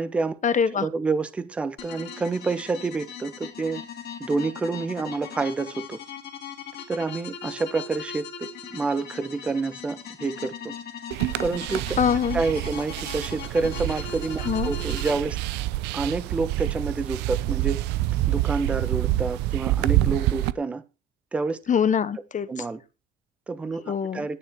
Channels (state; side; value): quieter; left; 3.1 dB